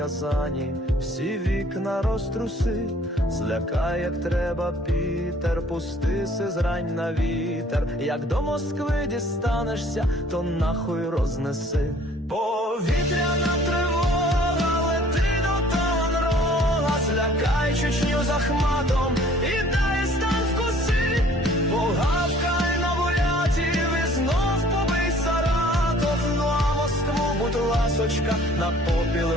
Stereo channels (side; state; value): both; normal; correlation 0.55